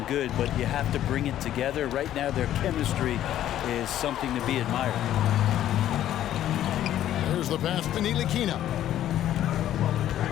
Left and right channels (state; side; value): quieter; right; 12.0 dB